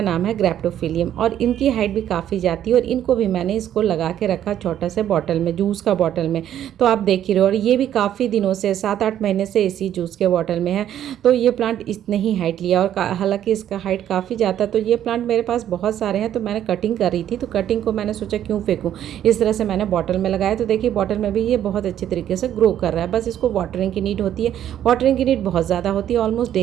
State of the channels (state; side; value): quieter; left; 10.9 dB